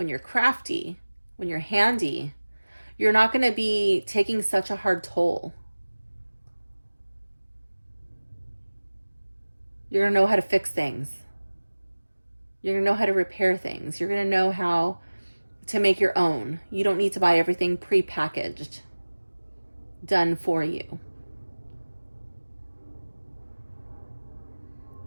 you're crafty, when you're handy, you're not going to be taking such a hard toll. You're going to know how to fix things. You're going to know how to repair things. You're going to know how to make your own. You don't need to buy everything pre-packaged, done for you.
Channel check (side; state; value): both; inverted; correlation -1.00